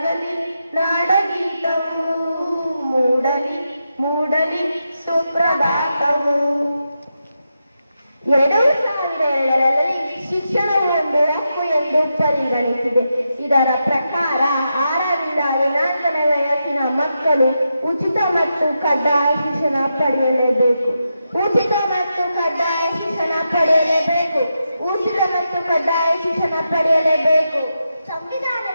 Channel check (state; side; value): inverted; both; correlation -0.86